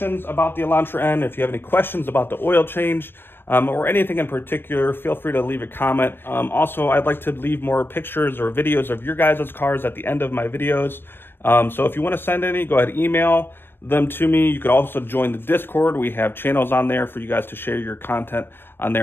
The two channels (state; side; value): late; right; 0.10 ms